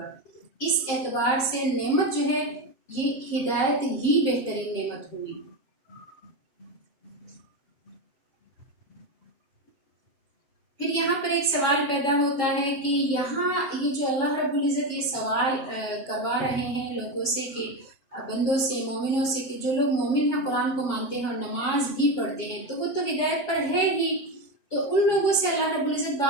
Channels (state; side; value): late; right; 7.3 ms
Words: اس اعتبار سے نعمت جو ہے یہ ہدایت ہی بہترین نعمت ہوئی۔ پھر یہاں پر ایک سوال پیدا ہوتا ہے کہ یہاں یہ جو اللہ رب العزت یہ سوال کروا رہے ہیں لوگوں سے کہ بندوں سے، مومنوں سے، کہ جو لوگ مومن ہیں، قرآن کو مانتے ہیں اور نماز بھی پڑھتے ہیں تو وہ تو ہدایت پر ہے ہی، تو ان لوگوں سے اللہ رب العزت